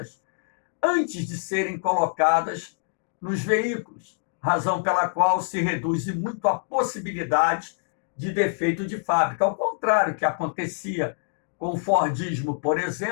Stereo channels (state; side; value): silent; right; 61 dB below the other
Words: antes de serem colocadas nos veículos, razão pela qual se reduz muito a possibilidade de defeito de fábrica, ao contrário que acontecia com o Fordismo, por